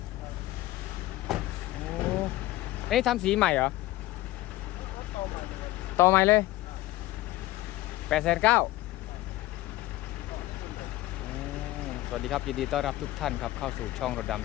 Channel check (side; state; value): right; quieter; 17.1 dB